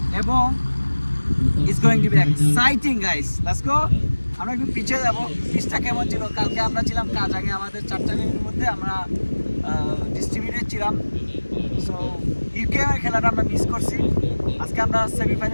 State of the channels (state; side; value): inverted; both; correlation -1.00